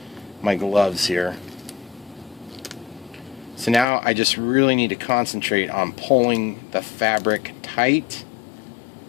gloves here. So now I just really need to concentrate on pulling the fabric tight,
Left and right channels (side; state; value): right; drops out; at 3.9 s